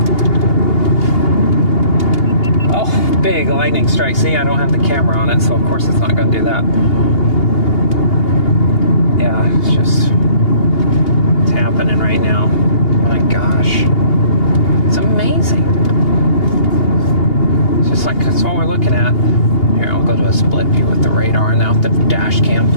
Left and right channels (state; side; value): late; right; 2.8 ms